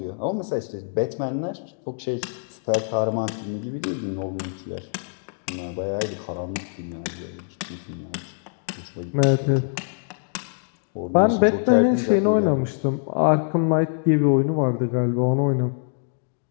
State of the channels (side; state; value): right; silent; digital silence